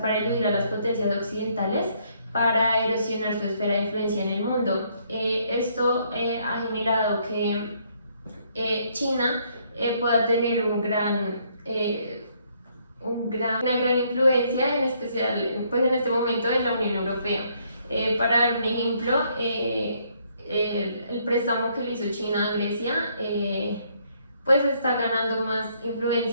para eludir a las potencias occidentales para erosionar su esfera de influencia en el mundo. Esto ha generado que China pueda tener una gran influencia, en especial pues en este momento en la Unión Europea. Para dar un ejemplo, el préstamo que le hizo China a Grecia pues está ganando más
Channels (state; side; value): inverted; both; correlation -0.69